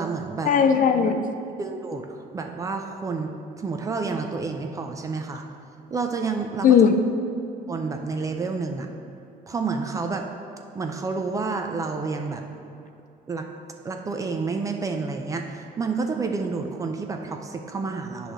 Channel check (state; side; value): normal; both; correlation 0.45